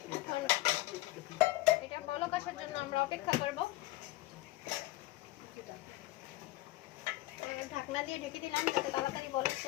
এখন এটা বলক আসার জন্য আমরা অপেক্ষা করব। ঢাকনা দিয়ে ঢেকে দিলাম যাতে তাড়াতাড়ি বলক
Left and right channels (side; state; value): right; quieter; 17.8 dB